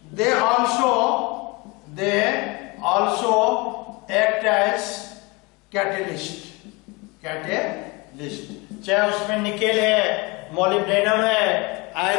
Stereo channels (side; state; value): right; quieter; 26.3 dB